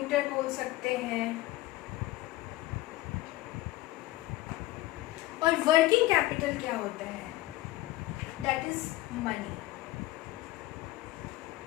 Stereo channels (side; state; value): right; quieter; 17.3 dB